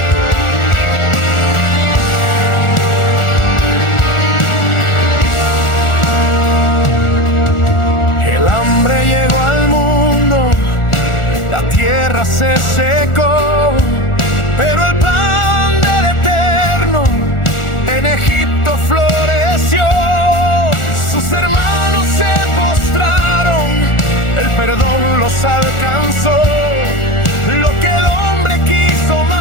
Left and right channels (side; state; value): right; late; 1.4 ms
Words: El hambre llegó al mundo, la tierra se secó, pero el plan del Eterno en Egipto floreció. Sus hermanos se postraron, el perdón los alcanzó. Lo que el hombre quiso